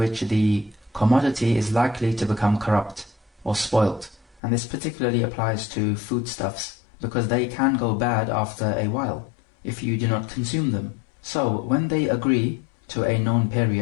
the commodity is likely to become corrupt or spoilt. And this particularly applies to foodstuffs, because they can go bad after a while if you do not consume them. So when they agree to a known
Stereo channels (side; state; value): right; drops out; at 4.4 s